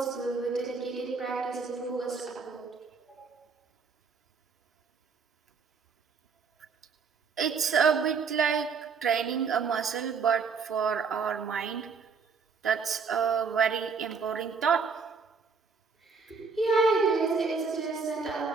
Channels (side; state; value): left; quieter; 5.3 dB